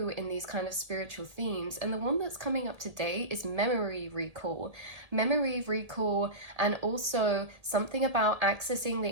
in these kind of spiritual themes. And the one that's coming up today is memory recall. Memory recall, and also something about accessing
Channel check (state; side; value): late; left; 1.8 ms